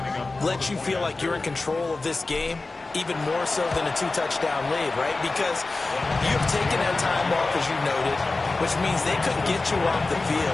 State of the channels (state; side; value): quieter; right; 3.4 dB